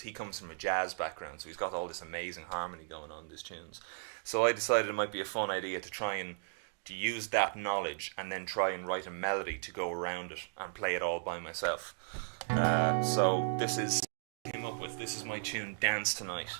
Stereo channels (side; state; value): left; silent; digital silence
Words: comes from a jazz background, so he's got all this amazing harmony going on in his tunes. So I decided it might be a fun idea to try and to use that knowledge and then try and write a melody to go around it and play it all by myself. So this is my tune Dance Tonight,